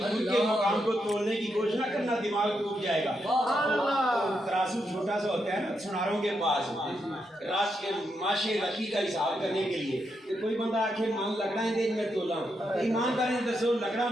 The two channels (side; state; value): both; normal; correlation 0.82